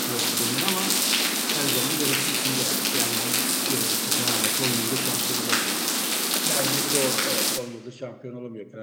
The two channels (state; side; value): identical; both; correlation 1.00